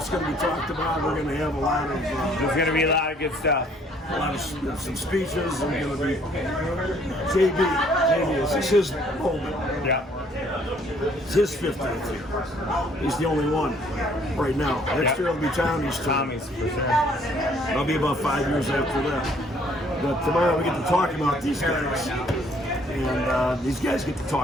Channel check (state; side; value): normal; both; correlation 0.62